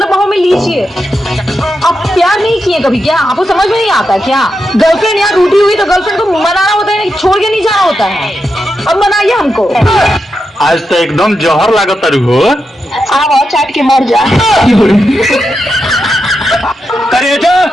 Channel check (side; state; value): both; normal; correlation 0.87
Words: बाहों में लीजिए। आप प्यार नहीं किए कभी क्या? आपको समझ में नहीं आता क्या? गर्लफ्रेंड यहाँ रूठी हुई तो गर्लफ्रेंड को मनाना होता है, छोड़ के नहीं जाना होता है। अब मनाइए हमको। आज तो एकदम जहर लागत तारू हो। आओ चाट के मर जा। करेजा,